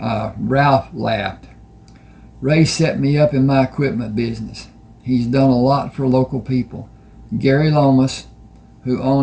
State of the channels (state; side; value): identical; both; correlation 1.00